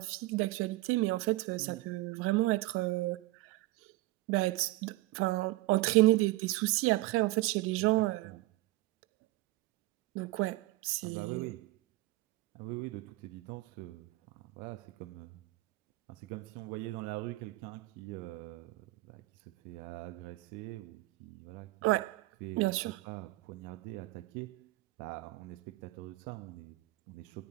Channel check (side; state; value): left; quieter; 19.3 dB